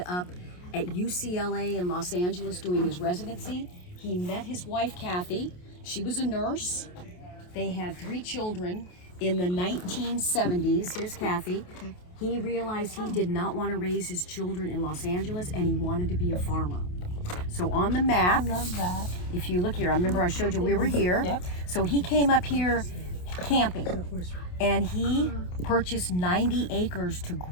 up at UCLA in Los Angeles doing his residency. He met his wife, Kathy. She was a nurse. They had 3 children in the 1970s. Here's Kathy. He realized he did not want to raise his children in Los Angeles, and he wanted to be a farmer. So on the map, I love that. if you look here, I remember I showed you we were here. Yep. So he came up here camping, and he purchased 90 acres to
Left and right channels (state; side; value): late; right; 28 ms